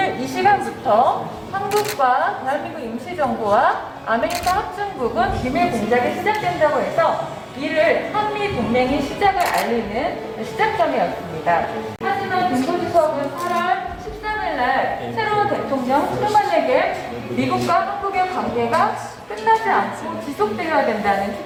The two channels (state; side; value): identical; both; correlation 1.00